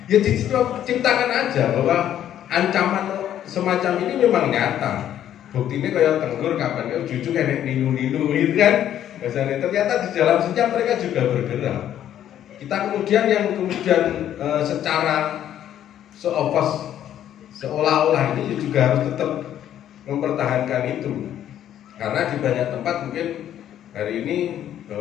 ya diciptakan aja bahwa ancaman semacam ini memang nyata. Buktinya kayak Tenggur kapan kan jujur kayak ninu-ninu gitu kan. Misalnya ternyata di dalam senyap mereka juga bergerak. Kita kemudian yang kemudian secara seolah-olah ini juga harus tetap mempertahankan itu. Karena di banyak tempat mungkin hari ini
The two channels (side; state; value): right; quieter; 10.9 dB